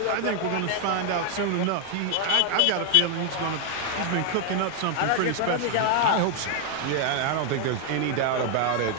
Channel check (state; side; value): different; both; correlation 0.00